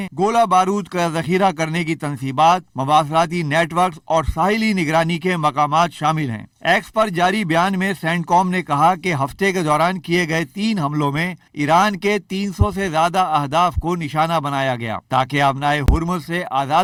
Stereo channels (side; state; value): both; identical; correlation 1.00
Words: گولہ بارود کا ذخیرہ کرنے کی تنصیبات، مواصلاتی نیٹ ورکس اور ساحلی نگرانی کے مقامات شامل ہیں۔ ایکس پر جاری بیان میں سینٹ کام نے کہا کہ ہفتے کے دوران کیے گئے 3 حملوں میں ایران کے 300 سے زیادہ اہداف کو نشانہ بنایا گیا تاکہ آبنائے ہرمز سے